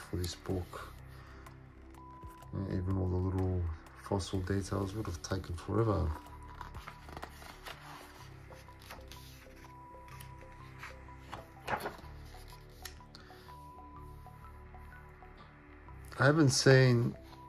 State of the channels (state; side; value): identical; both; correlation 1.00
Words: this book. Even all the little fossil details would have taken forever. I haven't seen